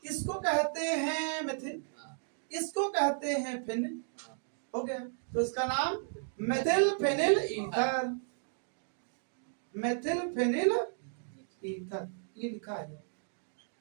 इसको कहते हैं मेथिल, इसको कहते हैं फिनिल, हो गया। तो इसका नाम methyl phenyl ether, methyl phenyl ether, ये लिखा है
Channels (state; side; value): silent; left; digital silence